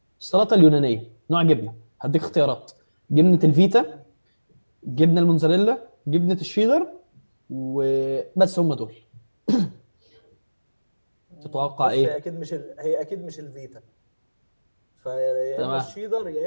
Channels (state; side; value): inverted; both; correlation -1.00